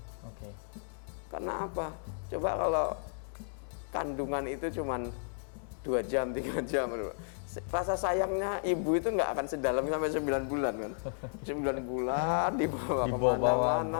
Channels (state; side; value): silent; right; digital silence